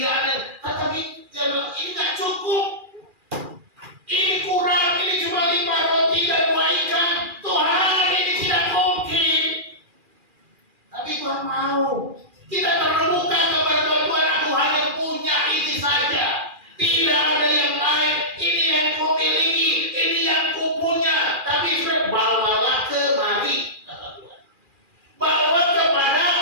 tetapi ini nggak cukup, ini kurang, ini cuma 5 roti dan 2 ikan. Tuhan, ini tidak mungkin. Tapi Tuhan mau kita terbuka kepada Tuhan. Aku hanya punya ini saja, tidak ada yang lain. Ini yang ku miliki, ini yang ku punya. Tapi bawalah kemari, kata Tuhan. Bawa kepada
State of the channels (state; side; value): late; left; 2.4 ms